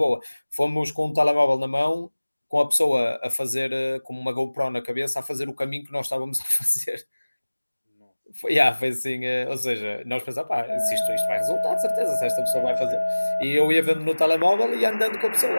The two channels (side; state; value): both; inverted; correlation -1.00